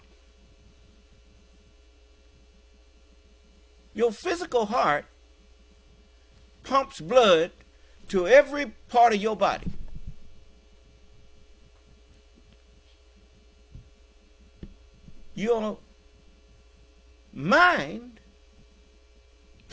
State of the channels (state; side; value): identical; both; correlation 1.00